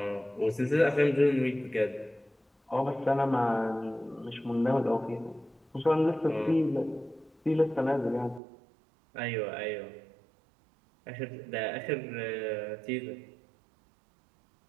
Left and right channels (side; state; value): left; drops out; at 8.4 s